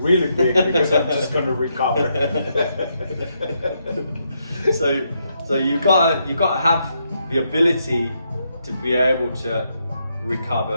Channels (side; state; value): both; inverted; correlation -0.79